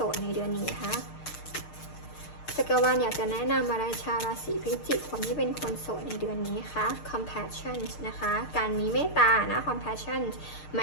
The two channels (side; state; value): right; late; 6.6 ms